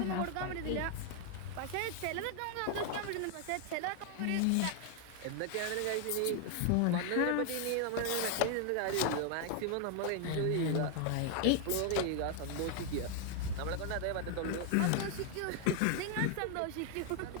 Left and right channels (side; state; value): both; different; correlation 0.00